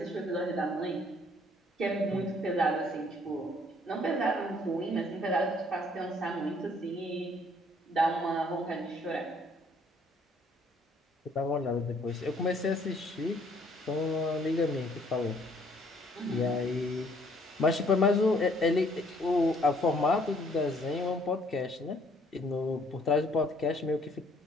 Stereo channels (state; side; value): normal; both; correlation 0.62